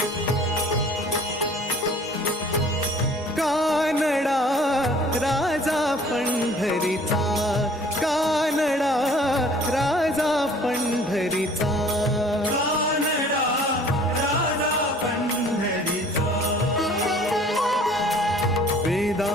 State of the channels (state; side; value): normal; both; correlation 0.52